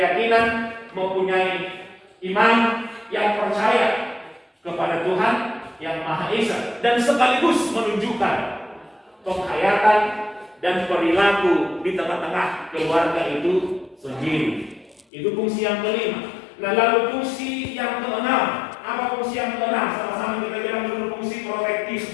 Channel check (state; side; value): drops out; right; at 15.1 s